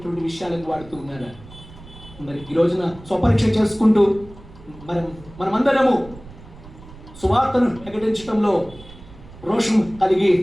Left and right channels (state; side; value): noise; right; rumble, 19 dB below the sound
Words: విషయాలకు వాడుతున్నారా? మరి ఈ రోజున స్వపరీక్ష చేసుకుంటూ మనమందరము సువార్తను ప్రకటించడంలో రోషం కలిగి